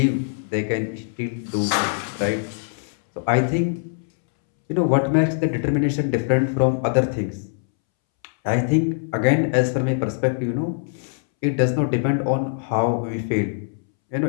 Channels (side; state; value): right; silent; 64 dB below the other